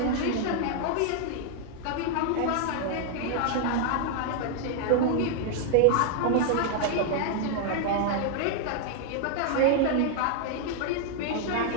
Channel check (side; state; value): both; different; correlation 0.00